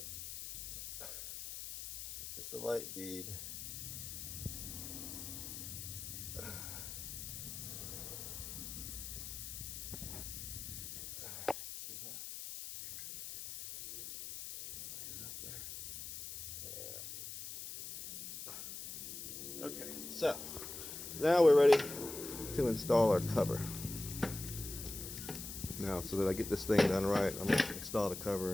Just a light bead. See that? Right up there. Yeah. Okay, so now we're ready to install our cover. Now, so that I get this thing done right, I'm going to install the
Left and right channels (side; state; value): left; noise; hiss, 8 dB below the sound